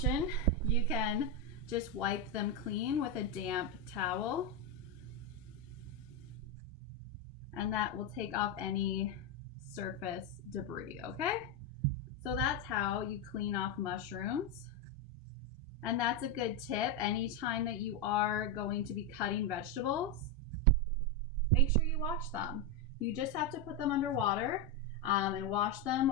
You can just wipe them clean with a damp towel, and that will take off any surface debris, okay? So that's how you clean off mushrooms. And that's a good tip anytime that you are going to be cutting vegetables. Make sure you wash them. You just have to put them under water and wash them,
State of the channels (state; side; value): normal; both; correlation 0.07